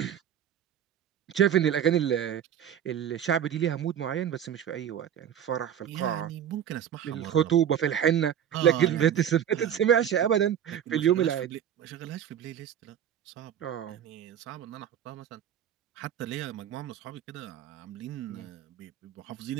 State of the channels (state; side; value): quieter; left; 9.6 dB